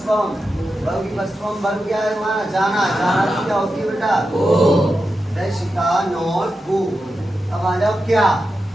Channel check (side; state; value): both; normal; correlation 0.90